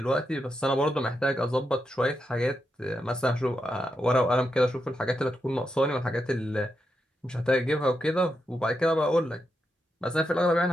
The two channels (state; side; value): normal; both; correlation 0.85